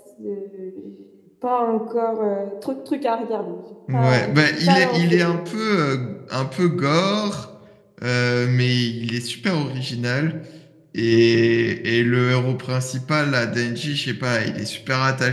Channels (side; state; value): both; identical; correlation 1.00